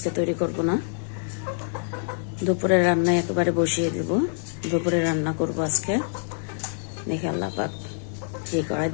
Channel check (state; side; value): silent; right; digital silence